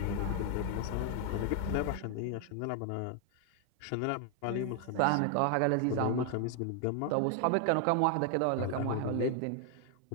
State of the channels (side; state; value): both; different; correlation 0.00